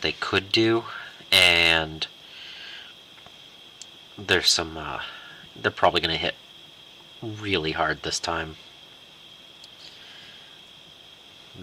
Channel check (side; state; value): both; identical; correlation 1.00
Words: could do, and there's some, they're probably going to hit really hard this time.